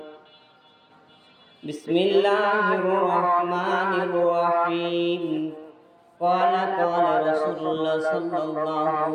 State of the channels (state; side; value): identical; both; correlation 1.00